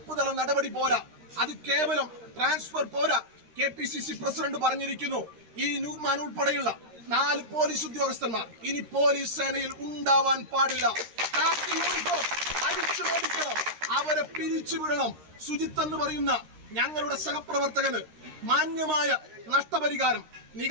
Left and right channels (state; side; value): late; left; 13 ms